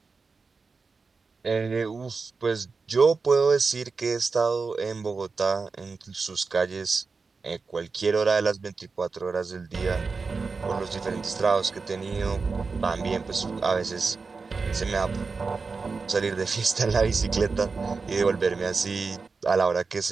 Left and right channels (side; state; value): left; quieter; 4.5 dB